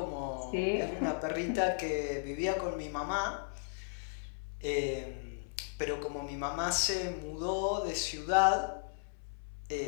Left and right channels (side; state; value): right; silent; 54 dB below the other